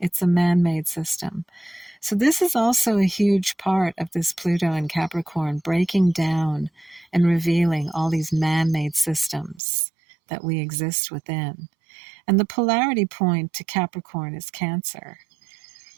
a man-made system. So this is also a huge part of this Pluto and Capricorn, breaking down and revealing all these man-made systems that we exist within. And the polarity point to Capricorn is Cancer.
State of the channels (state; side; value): drops out; left; at 9.6 s